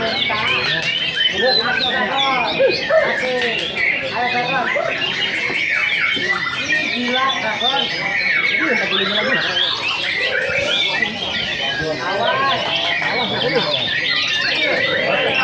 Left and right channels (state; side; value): identical; both; correlation 1.00